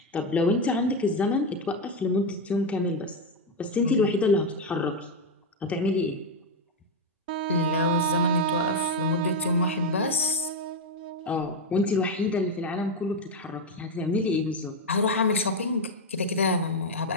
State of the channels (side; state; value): both; normal; correlation 0.06